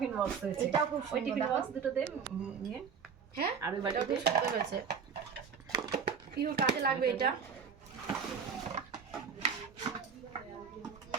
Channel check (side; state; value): left; quieter; 6.5 dB